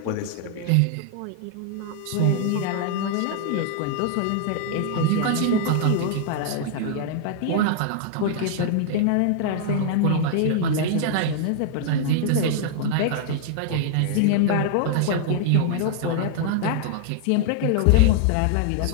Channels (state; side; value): different; both; correlation -0.01